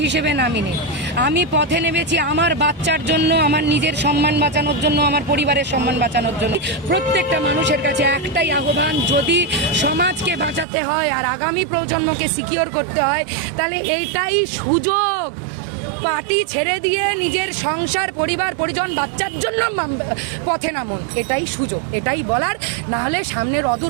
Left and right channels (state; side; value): drops out; left; at 10.7 s